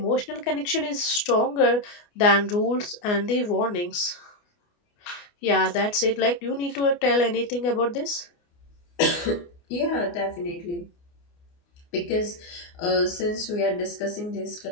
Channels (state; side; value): late; right; 29 ms